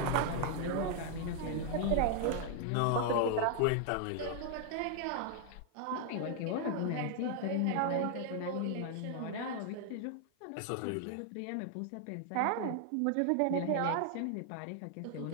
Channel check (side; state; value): both; different; correlation 0.00